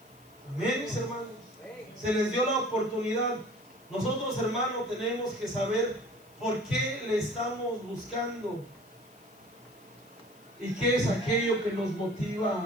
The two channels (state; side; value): noise; left; hiss, 28 dB below the sound